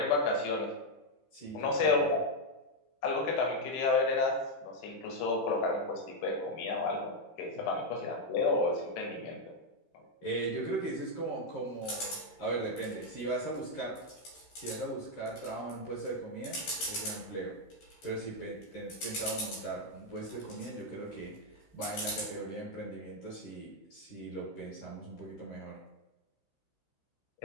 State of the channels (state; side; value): late; right; 15 ms